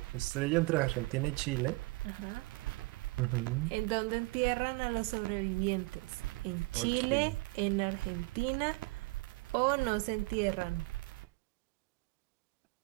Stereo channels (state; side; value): quieter; left; 24.0 dB